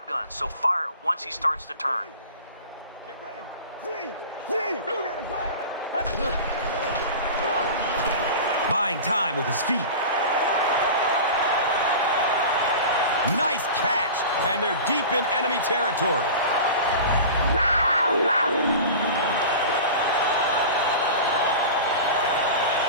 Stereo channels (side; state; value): both; inverted; correlation -0.34